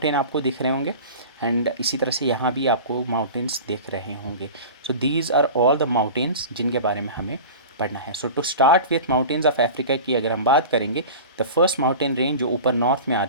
आपको दिख रहे होंगे, एंड इसी तरह से यहाँ भी आपको माउंटेन्स दिख रहे होंगे। So these are all the mountains जिनके बारे में हमें पढ़ना है। So to start with mountains of Africa की अगर हम बात करेंगे, द फर्स्ट माउंटेन रेंज जो ऊपर नॉर्थ में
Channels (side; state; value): both; inverted; correlation -0.35